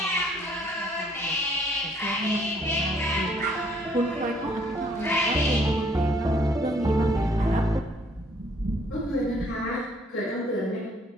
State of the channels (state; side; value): normal; both; correlation 0.64